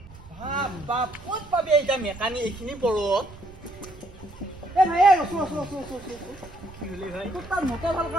বাপ ক'ত পাবি এতিয়া মেকানিক এইখিনি পৰত? ভাই ৰচো। কি হ'লি ভাই? তোৰ তাত মটৰ ভাল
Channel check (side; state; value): right; noise; rumble, 19 dB below the sound